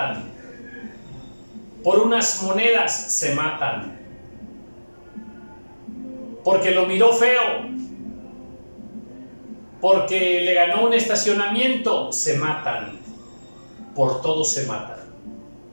por unas monedas se matan, porque lo miró feo, porque le ganó un estacionamiento, se matan, por todo se matan.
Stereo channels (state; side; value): inverted; both; correlation -1.00